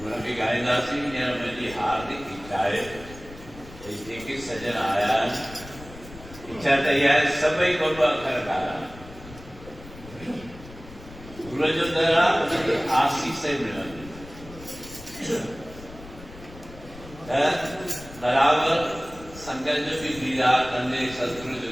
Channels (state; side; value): noise; left; rumble, 17 dB below the sound